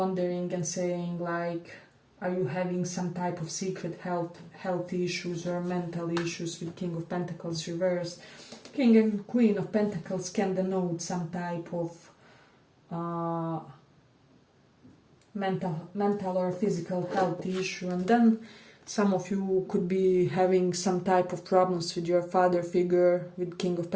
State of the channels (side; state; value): both; identical; correlation 1.00